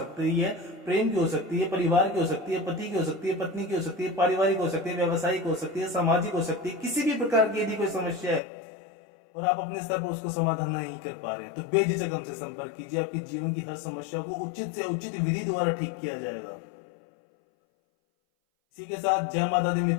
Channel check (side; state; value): right; drops out; at 8.4 s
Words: है, प्रेम की हो सकती है, परिवार की हो सकती है, पति की हो सकती है, पत्नी की हो सकती है, पारिवारिक हो सकती है, व्यवसायिक हो सकती है, सामाजिक हो सकती है, किसी भी प्रकार की यदि कोई समस्या है और आप अपने स्तर पर उसको समाधान नहीं कर पा रहे हैं, तो बेझिझक हमसे संपर्क कीजिए। आपकी जीवन की हर समस्या को उचित से उचित विधि द्वारा ठीक किया जाएगा। इसी के साथ जय माता दी